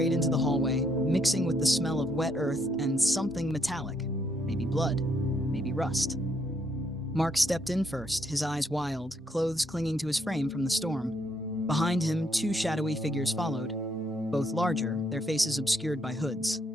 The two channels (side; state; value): both; normal; correlation 0.73